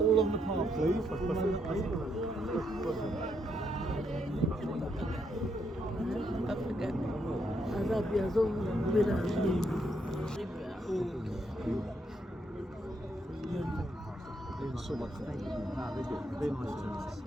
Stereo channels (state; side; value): normal; both; correlation 0.76